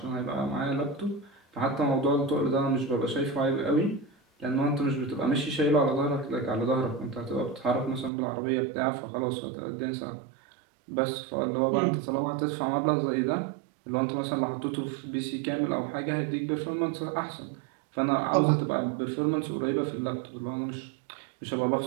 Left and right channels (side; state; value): left; drops out; at 8.1 s